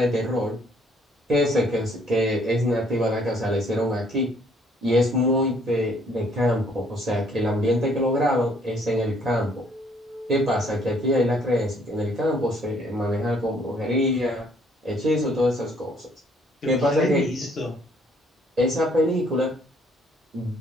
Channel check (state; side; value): normal; both; correlation 0.63